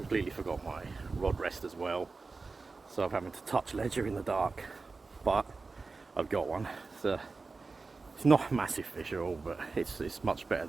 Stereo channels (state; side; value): quieter; left; 4.0 dB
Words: forgot my rod rest as well, so I'm having to touch ledger in the dark, but I've got one. It's not a massive fish at all, but it's much better